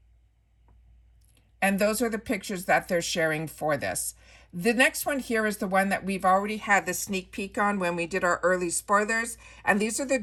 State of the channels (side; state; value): both; identical; correlation 1.00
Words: And those are the pictures that they're sharing for this. The next one here is the one that we've already had the sneak peek on when we did our early spoilers. And these are the